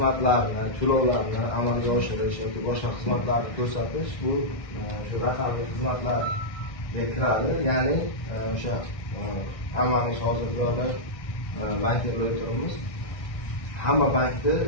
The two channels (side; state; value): right; late; 1.6 ms